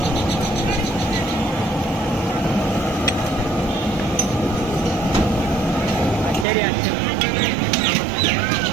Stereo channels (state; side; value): drops out; left; at 6.5 s